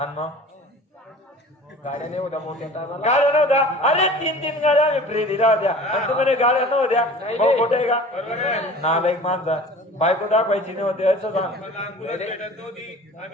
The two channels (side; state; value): both; normal; correlation 0.42